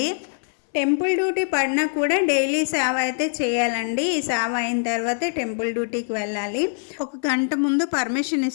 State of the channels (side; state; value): right; silent; 60 dB below the other